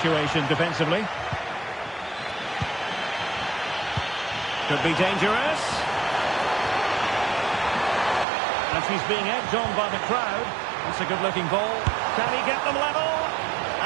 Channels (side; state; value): left; drops out; at 8.2 s